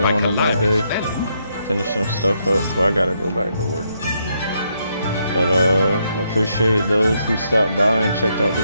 on my day, finish some stuff up before I gotta go back to work. But I appreciate those who stopped by and checked out the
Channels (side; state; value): both; inverted; correlation -0.77